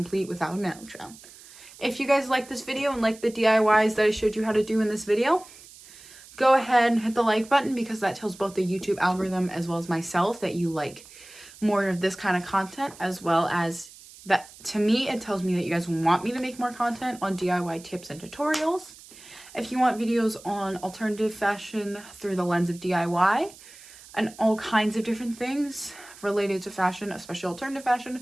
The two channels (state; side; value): noise; right; hiss, 20 dB below the sound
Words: without an outro. If you guys like this video and like the DIYs that I showed you how to do in this video, go ahead and hit the like button because that tells both the YouTube algorithm as well as myself that you like more of this kind of content, as well as that to me, it tells me that you guys want me to make more content on DIY tips and tutorials. If you want videos on alternative fashion through the lens of DIY and all kinds of different things related to fashion, especially alternative